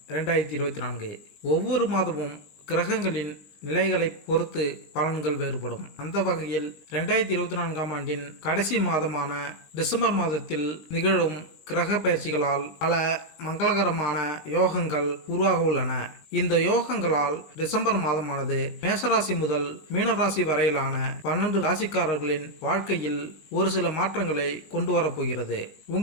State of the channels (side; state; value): right; late; 19 ms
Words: 2024. ஒவ்வொரு மாதமும் கிரகங்களின் நிலைகளை பொறுத்து பலன்கள் வேறுபடும். அந்த வகையில் 2024ஆம் ஆண்டின் கடைசி மாதமான டிசம்பர் மாதத்தில் நிகழும் கிரக பயிற்சிகளால் பல மங்களகரமான யோகங்கள் உருவாக உள்ளன. இந்த யோகங்களால் டிசம்பர் மாதமானது மேசராசி முதல் மீனராசி வரையிலான 12 ராசிக்காரர்களின் வாழ்க்கையில் ஒரு சில மாற்றங்களை கொண்டு வரப்போகிறது.